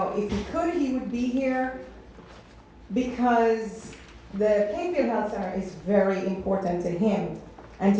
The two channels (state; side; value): identical; both; correlation 1.00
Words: if he could, he would be here because the Plainfield Health Center is very important to him and to